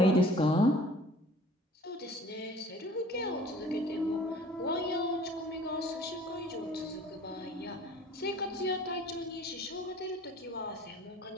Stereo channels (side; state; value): both; normal; correlation 0.50